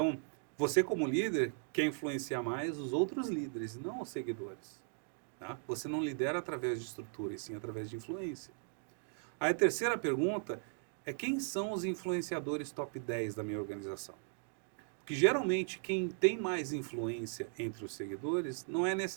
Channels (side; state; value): left; silent; 53 dB below the other